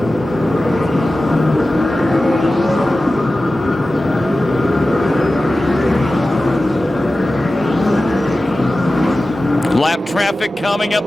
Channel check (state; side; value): normal; both; correlation 0.95